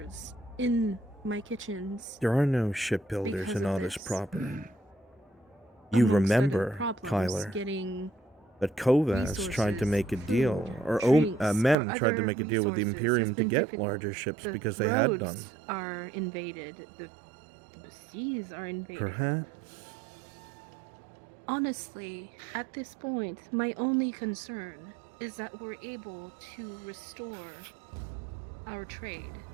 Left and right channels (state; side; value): drops out; left; at 11.8 s